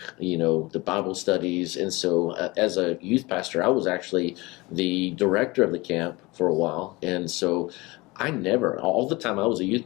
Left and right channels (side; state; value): right; quieter; 23.0 dB